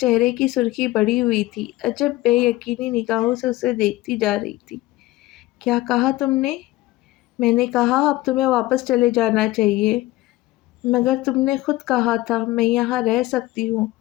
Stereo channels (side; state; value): right; quieter; 17.3 dB